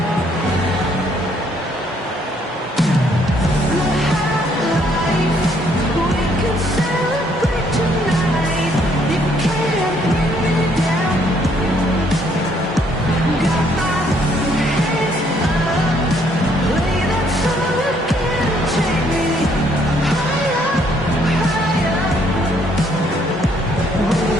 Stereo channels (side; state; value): both; normal; correlation 0.67